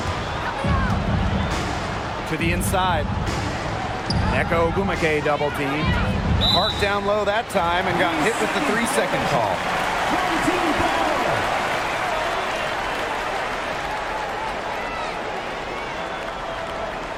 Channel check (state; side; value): identical; both; correlation 1.00